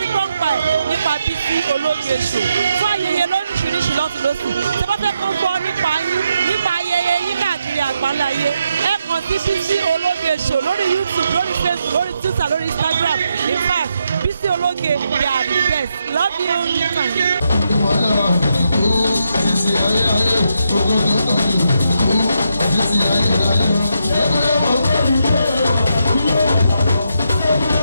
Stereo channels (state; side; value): inverted; both; correlation -0.81